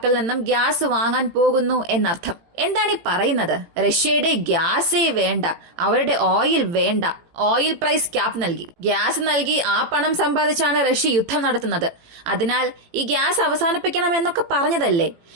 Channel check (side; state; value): left; late; 18 ms